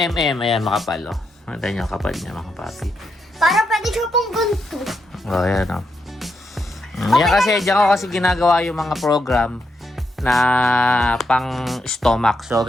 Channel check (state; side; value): normal; both; correlation 0.82